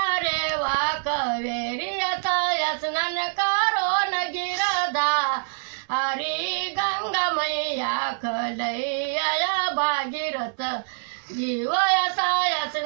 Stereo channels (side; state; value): left; silent; digital silence